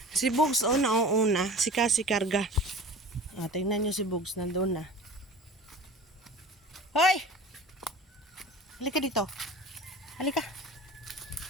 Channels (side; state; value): both; normal; correlation 0.39